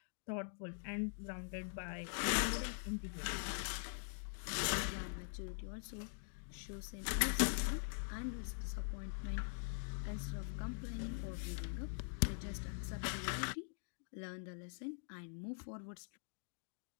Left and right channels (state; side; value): silent; right; digital silence